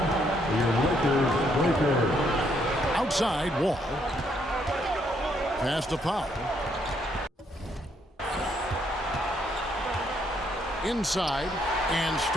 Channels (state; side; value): normal; both; correlation 0.72